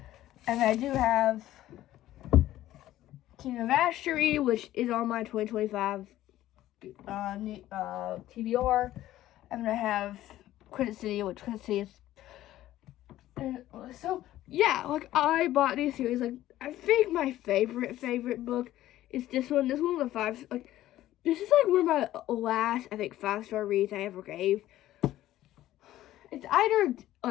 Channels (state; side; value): quieter; right; 14.2 dB